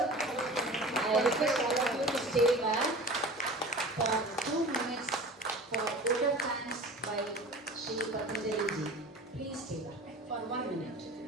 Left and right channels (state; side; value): normal; both; correlation 0.38